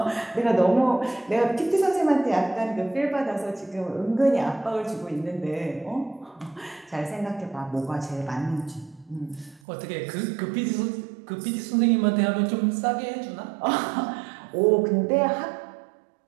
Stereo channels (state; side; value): drops out; left; at 9.6 s